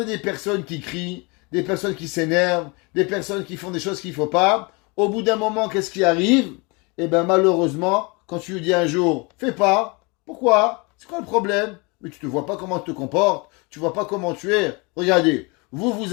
des personnes qui crient, des personnes qui s'énervent, des personnes qui font des choses qu'il ne faut pas. Au bout d'un moment, qu'est-ce qui arrive? Eh bien, malheureusement, quand tu lui dis un jour, fais pas. Pourquoi? C'est quoi le problème? Mais tu ne vois pas comment tu te comportes. Tu ne vois pas comment tu es. Regardez,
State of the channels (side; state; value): right; quieter; 28.6 dB